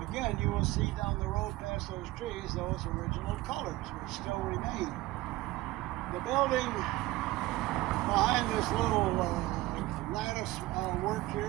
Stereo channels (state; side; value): quieter; left; 18.2 dB